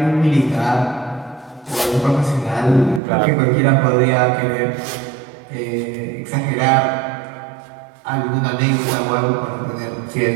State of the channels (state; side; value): drops out; left; at 3.0 s